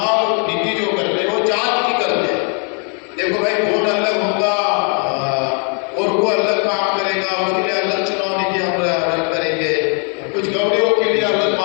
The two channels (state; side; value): quieter; right; 40.0 dB